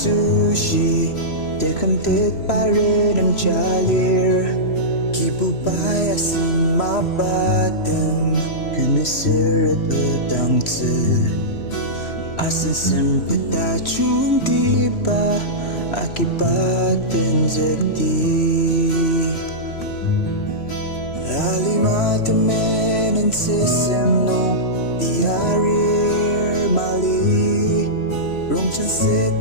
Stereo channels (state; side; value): late; right; 3.0 ms